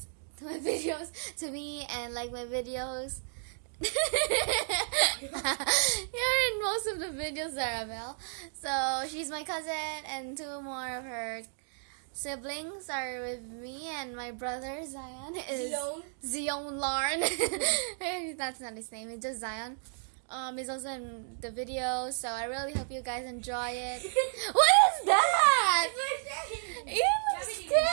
to me, and like my videos. You're in most of the videos, Zarabel. So she's my cousin, and two more of her siblings are with me, and my brother Zion is Zion Larn. That's not his name. It's just Zion. He's also in the video, so I really hope you guys enjoy it. What is that? It looks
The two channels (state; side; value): silent; left; digital silence